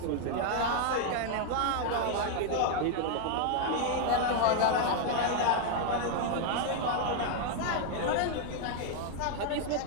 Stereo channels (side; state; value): both; different; correlation 0.00